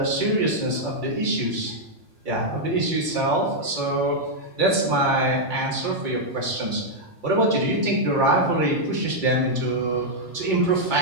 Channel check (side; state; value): left; late; 2.3 ms